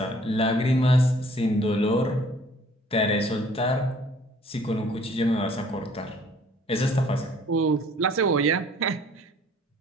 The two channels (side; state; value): both; normal; correlation 0.56